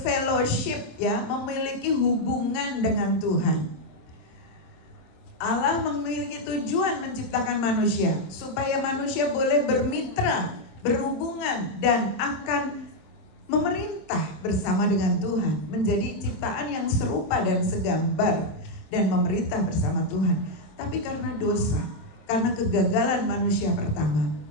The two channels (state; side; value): late; right; 27 ms